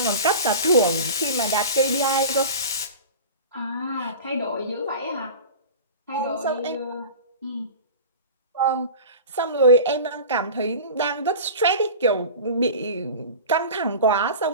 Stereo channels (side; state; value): both; inverted; correlation -0.34